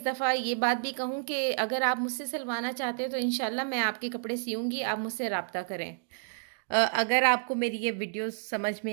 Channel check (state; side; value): silent; left; digital silence